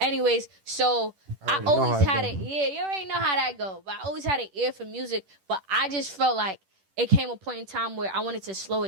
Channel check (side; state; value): left; late; 10 ms